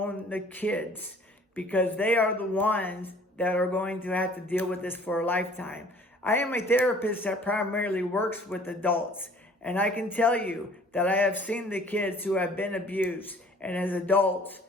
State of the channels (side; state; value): both; normal; correlation 0.53